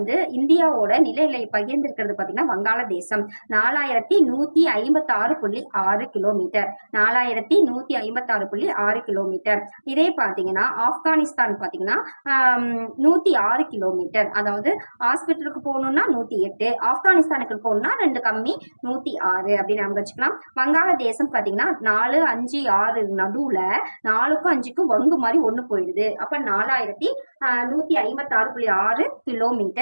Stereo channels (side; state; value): both; inverted; correlation -1.00